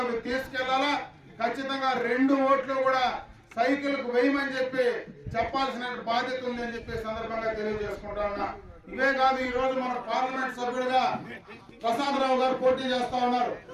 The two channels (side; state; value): both; identical; correlation 1.00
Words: తీసుకెళ్లాలా. ఖచ్చితంగా 2 ఓట్లు కూడా సైకిల్ కు వేయమని చెప్పి చెప్పాల్సిన బాధ్యత ఉంది అని చెప్పి సందర్భంగా తెలియజేసుకుంటా ఉన్నా. ఇవే కాదు, ఈ రోజు మన పార్లమెంట్ సభ్యుడిగా ప్రసాదరావు గారు పోటీ చేస్తా ఉన్నారు.